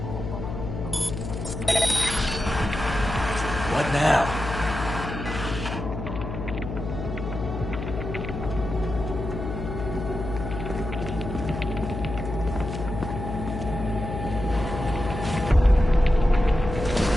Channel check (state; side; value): noise; left; hum, 6 dB below the sound